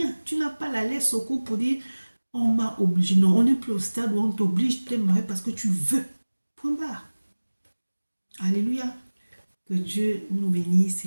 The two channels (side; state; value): both; inverted; correlation -1.00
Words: Tu n'as pas la laisse au cou pour dire on m'a obligé. Non, on n'est plus au stade où on t'oblige de te marier parce que tu veux. Point barre. Alléluia. Que Dieu nous bénisse